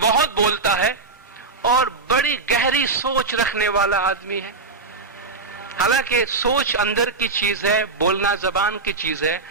بہت بولتا ہے اور بڑی گہری سوچ رکھنے والا آدمی ہے؟ حالانکہ سوچ اندر کی چیز ہے، بولنا زبان کی چیز ہے،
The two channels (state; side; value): quieter; left; 4.0 dB